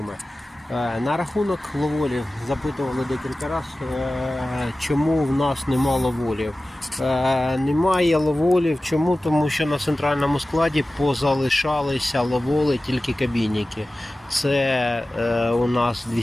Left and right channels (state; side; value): normal; both; correlation 0.96